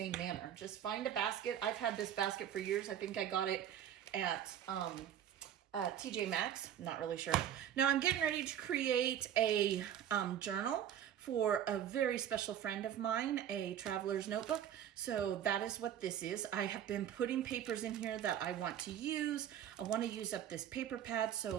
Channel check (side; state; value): left; quieter; 10.2 dB